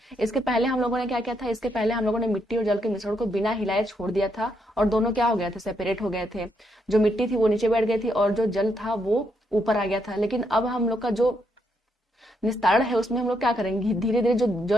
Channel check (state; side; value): normal; both; correlation 0.77